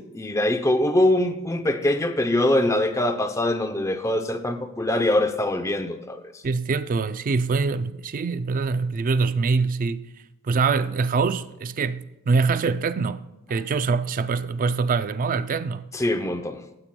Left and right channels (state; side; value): normal; both; correlation 0.63